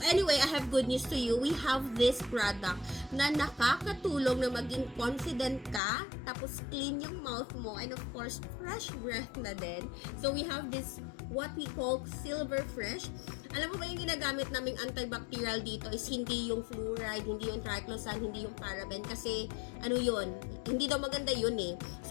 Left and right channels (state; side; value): drops out; right; at 5.8 s